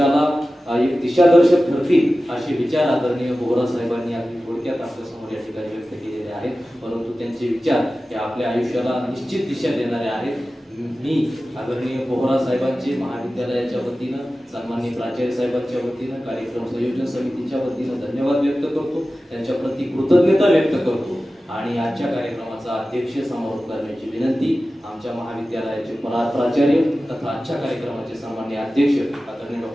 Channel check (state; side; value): normal; both; correlation 0.95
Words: एक दिशादर्शक ठरतील असे विचार आदरणीय बोहरा साहेबांनी अगदी थोडक्यात आपल्यासमोर या ठिकाणी व्यक्त केलेले आहेत. परंतु त्यांचे विचार हे आपल्या आयुष्याला निश्चित दिशा देणारे आहेत. मी आदरणीय बोहरा साहेबांचे महाविद्यालयाच्या वतीनं, सन्माननीय प्राचार्य साहेबांच्या वतीनं, कार्यक्रम संयोजन समितीच्या वतीनं धन्यवाद व्यक्त करतो, त्यांच्या प्रति कृतज्ञता व्यक्त करतो आणि आजच्या कार्यक्रमाचा अध्यक्ष समारोप करण्याची विनंती आमच्या महाविद्यालयाचे प्राचार्य तथा आजच्या कार्यक्रमाचे सन्माननीय अध्यक्ष आदरणीय